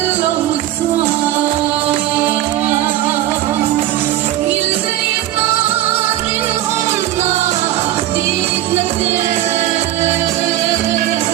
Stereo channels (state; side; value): quieter; left; 13.8 dB